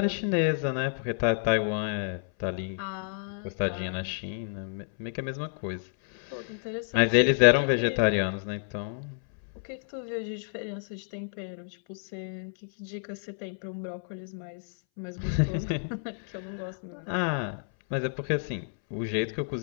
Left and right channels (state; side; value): silent; right; 58 dB below the other